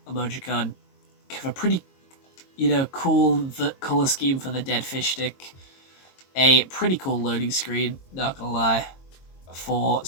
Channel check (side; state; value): right; late; 22 ms